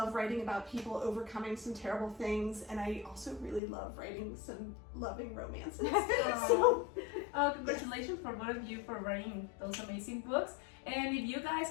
writing about people overcoming some terrible things. And I also really love writing some loving romances. So, congratulations for both of you for writing those amazing books. And if you guys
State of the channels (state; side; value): drops out; right; at 3.6 s